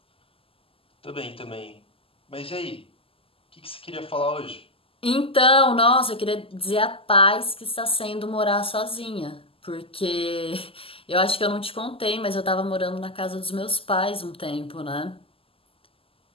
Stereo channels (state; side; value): late; right; 0.26 ms